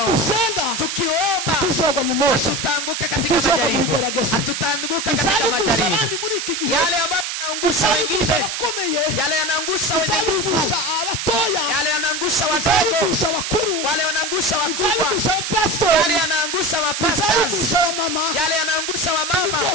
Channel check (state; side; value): noise; right; hiss, 3 dB below the sound